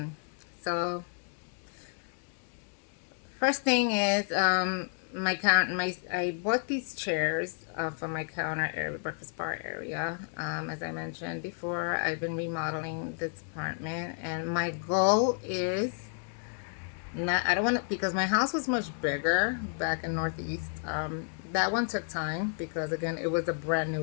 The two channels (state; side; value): silent; right; 57 dB below the other